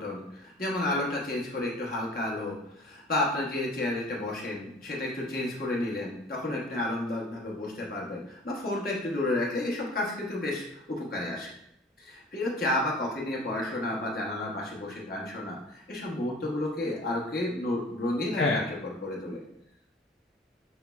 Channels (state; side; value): normal; both; correlation 0.46